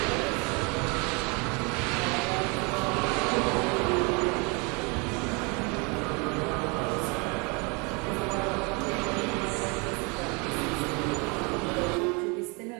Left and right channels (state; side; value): quieter; left; 30.7 dB